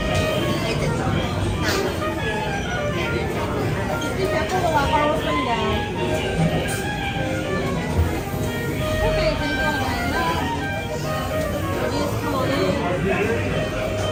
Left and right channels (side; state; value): both; identical; correlation 1.00